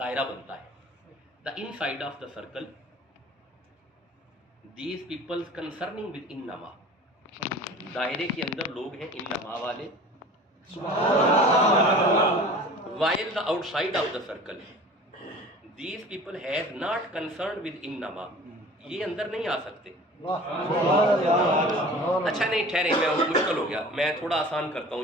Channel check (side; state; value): both; normal; correlation 0.42